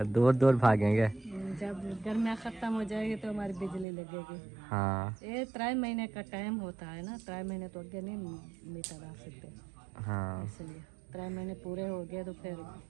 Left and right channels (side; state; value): left; drops out; at 3.9 s